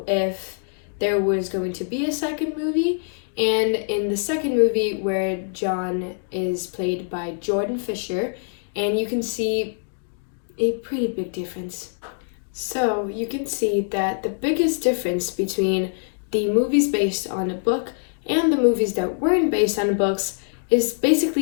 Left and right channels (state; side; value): silent; right; digital silence